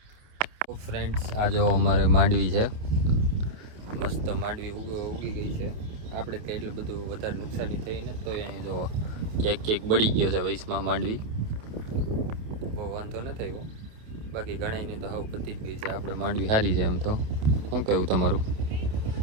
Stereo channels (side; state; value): left; late; 28 ms